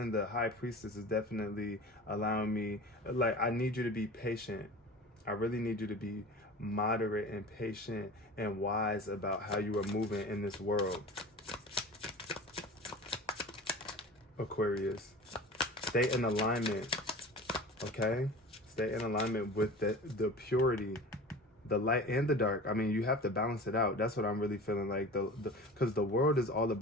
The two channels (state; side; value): normal; both; correlation 0.36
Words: the High Priestess is definitely allowing me, like, I need you to be patient. I really need you to be moderate and patient and wise about how you are moving in this world. Aquarius, stay in alignment, okay? Stay in alignment with the purity, the light and the dark. I mean, you have to balance it out. That's what I'm really feeling like, because the world is all